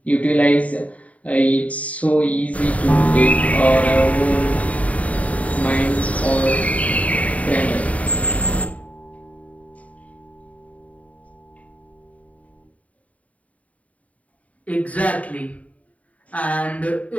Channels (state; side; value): late; right; 0.069 ms